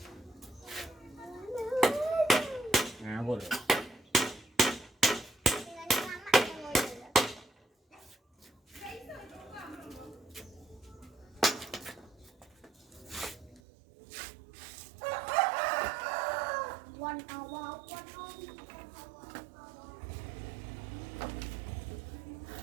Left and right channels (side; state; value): left; drops out; at 13.6 s